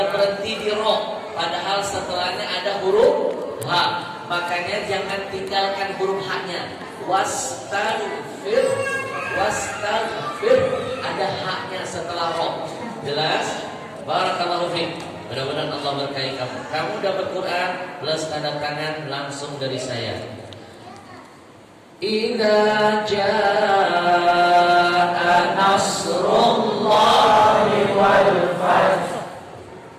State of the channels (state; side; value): identical; both; correlation 1.00